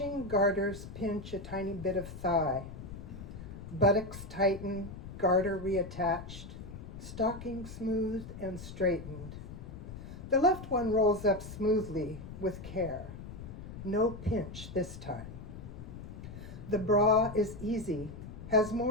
garters pinch a tiny bit of thigh. Buttocks tighten, garter reattached, stocking smoothed and straightened. The left one rolls up smoothly with care. No pinch this time. The bra is easy, has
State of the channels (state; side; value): noise; left; rumble, 11 dB below the sound